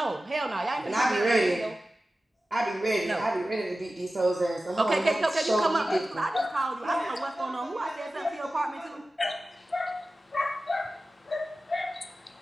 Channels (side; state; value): both; normal; correlation 0.95